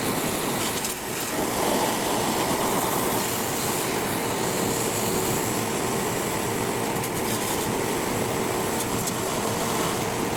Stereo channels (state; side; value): noise; left; hum, 23 dB below the sound